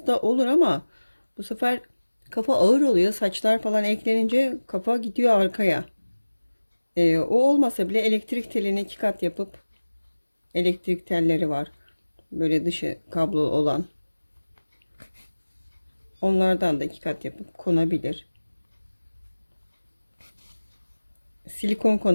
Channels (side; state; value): both; inverted; correlation -1.00